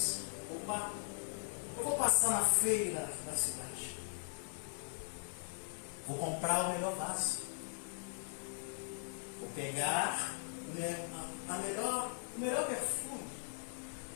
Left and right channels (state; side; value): silent; right; 51 dB below the other